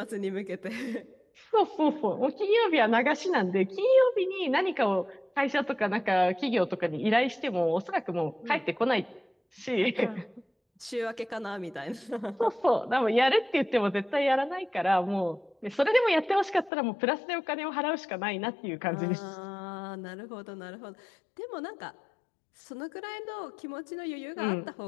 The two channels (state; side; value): drops out; right; at 16.7 s